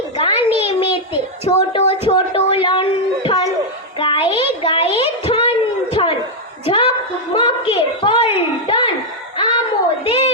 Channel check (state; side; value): normal; both; correlation -0.01